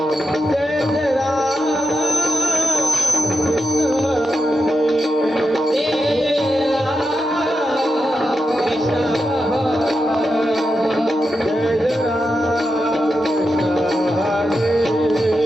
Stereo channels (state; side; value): normal; both; correlation 0.88